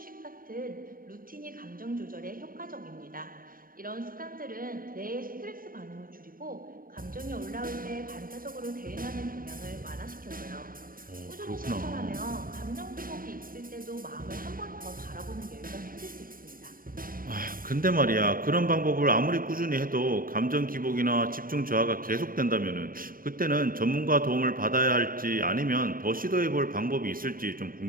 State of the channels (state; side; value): late; left; 0.41 ms